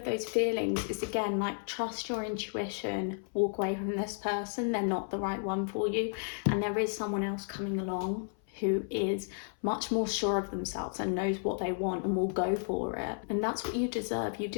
those feelings, it's again like trust your intuition, walk away from this person. They're not the right one for you, and there is someone else coming along who is much more sure of themselves and knows what they want and will go for it. And that's what you deserve. You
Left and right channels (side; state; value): right; silent; 56 dB below the other